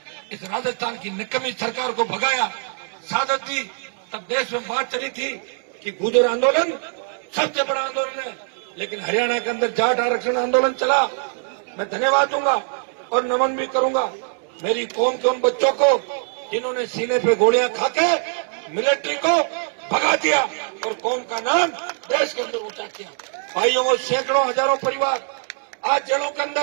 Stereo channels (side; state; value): left; silent; 61 dB below the other